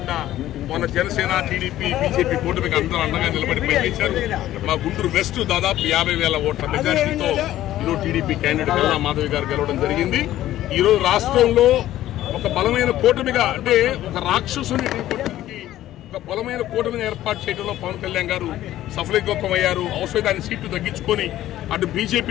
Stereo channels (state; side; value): quieter; right; 13.8 dB